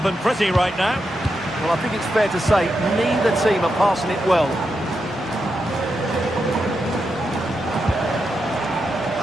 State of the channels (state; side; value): normal; both; correlation 0.86